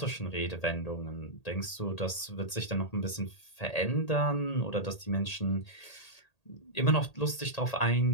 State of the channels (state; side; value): late; right; 1.8 ms